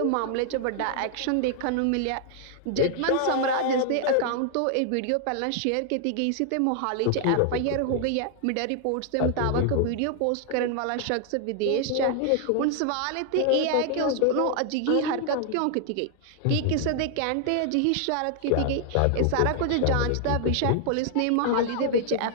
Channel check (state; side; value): different; both; correlation 0.00